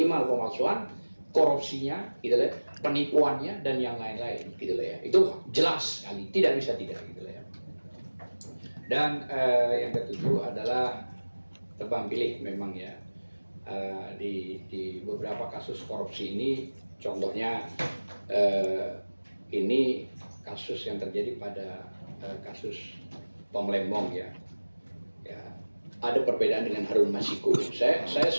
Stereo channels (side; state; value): both; inverted; correlation -1.00